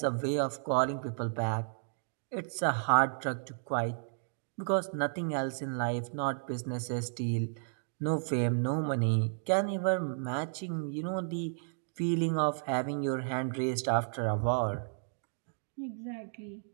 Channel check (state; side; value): silent; left; digital silence